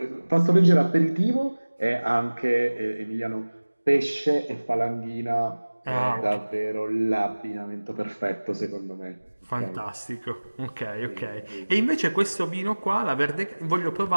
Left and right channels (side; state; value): both; inverted; correlation -1.00